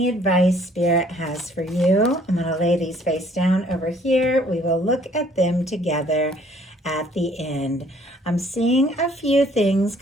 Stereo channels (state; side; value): normal; both; correlation 0.60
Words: advice Spirit has for you. I'm going to lay these face down over here. We will look at them together at the end. I'm seeing a few things